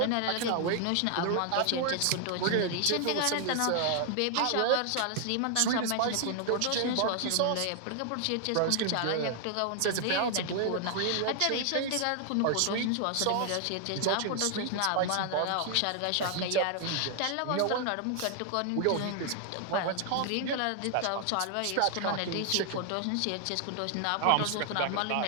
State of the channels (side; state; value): both; different; correlation 0.00